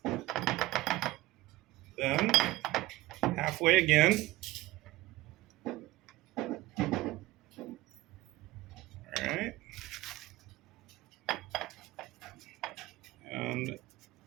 then halfway again. All right. And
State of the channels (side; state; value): left; quieter; 17.8 dB